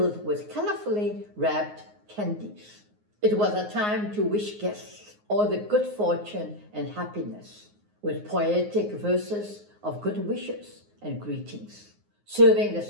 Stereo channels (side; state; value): left; late; 9.5 ms